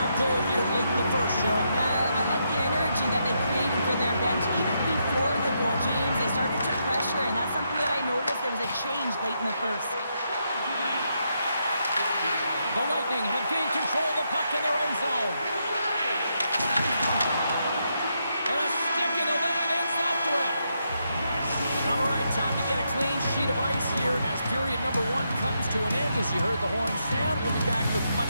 goal here late in the first, Cheryl. I like the energy that they created for their bench even before the goal, James. They started to pressure, and that's something that I noticed. There was a change late in the first. The Lightning have gained control of the puck in their own zone. And a stick in the lane ends that threat. All right, time to get a clean sheet of ice here as period number 1 comes to an end. As you heard the horn sound, we'll be back with much,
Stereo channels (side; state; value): both; inverted; correlation -0.80